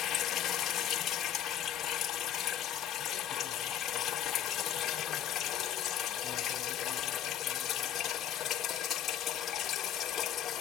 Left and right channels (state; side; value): quieter; right; 10.3 dB